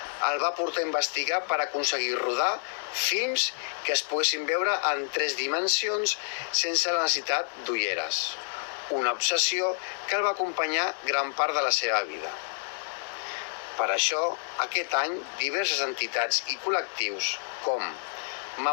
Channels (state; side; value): silent; right; digital silence